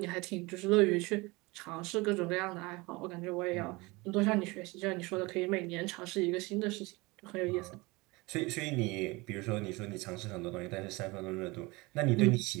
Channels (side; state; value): left; quieter; 24.0 dB